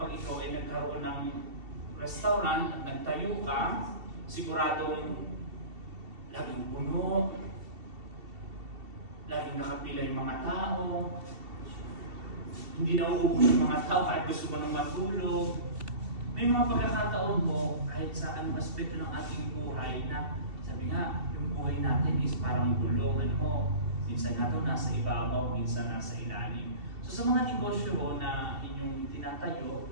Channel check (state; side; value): late; left; 2.7 ms